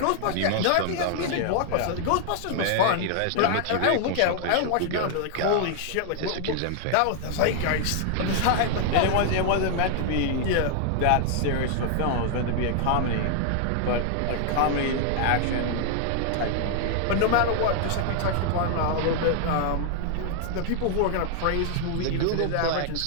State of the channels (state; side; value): different; both; correlation 0.00